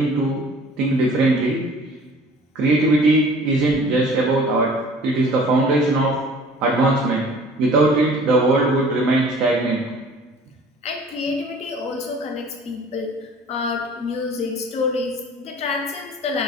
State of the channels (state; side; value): normal; both; correlation 0.49